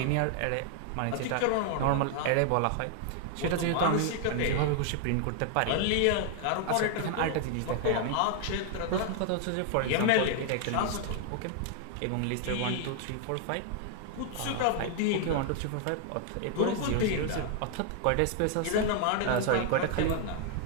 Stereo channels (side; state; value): both; different; correlation 0.00